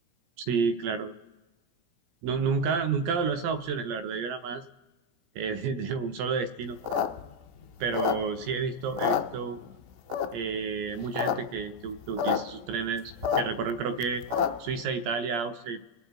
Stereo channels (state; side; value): late; left; 17 ms